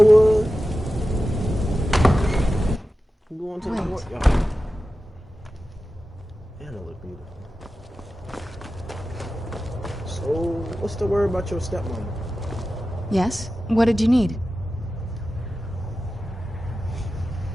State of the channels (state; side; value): normal; both; correlation 0.93